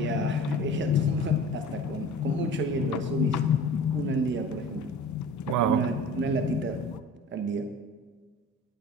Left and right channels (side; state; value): both; normal; correlation 0.40